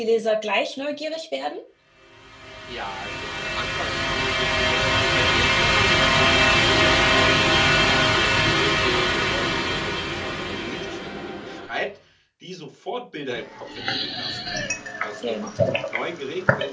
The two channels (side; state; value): both; identical; correlation 1.00